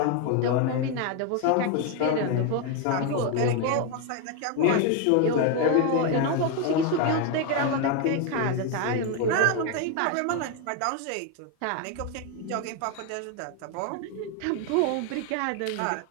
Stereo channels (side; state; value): both; different; correlation 0.01